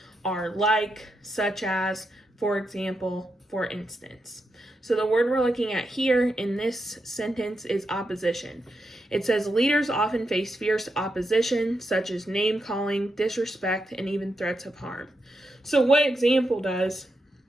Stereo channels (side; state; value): both; normal; correlation 0.85